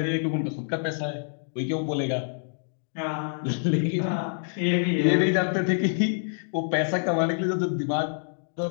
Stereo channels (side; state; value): right; silent; digital silence